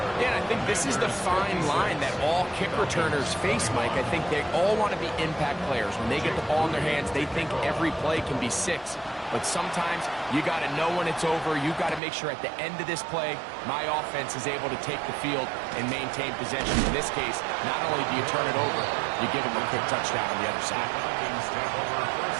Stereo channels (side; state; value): left; drops out; at 12.0 s